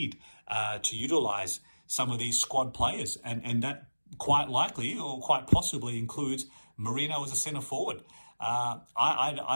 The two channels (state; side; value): inverted; both; correlation -1.00